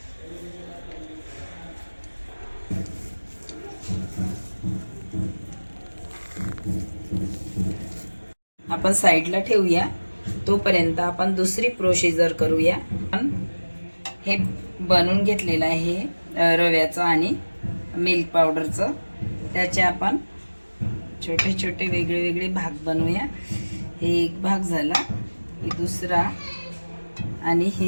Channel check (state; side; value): inverted; both; correlation -1.00